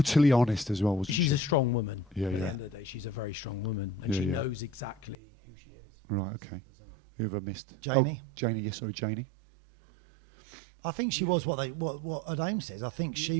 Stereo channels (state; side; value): drops out; left; at 5.2 s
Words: honest as well, wasn't she? She's a strong woman. Yeah, At the end of the day, she's a very strong woman, and she knows exactly who she is. Right, okay. Simple as that. Who have I missed? Janie. Oh, Janie. Yes, sorry, Janie. I think she was what her name says. I think